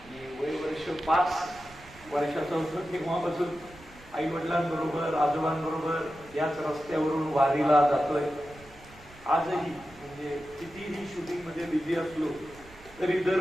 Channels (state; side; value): noise; right; rumble, 22 dB below the sound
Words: वर्ष 5 वर्षाचं होतं तेव्हापासून आई वडिलांबरोबर, आजोबांबरोबर याच रस्त्यावरून वारीला जातोय. आजही म्हणजे कितीही शूटिंगमध्ये बिझी असलो तरी